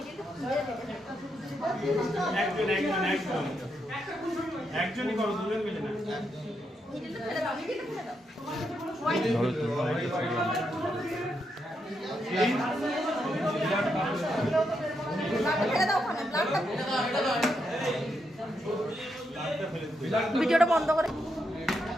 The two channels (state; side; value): normal; both; correlation 0.81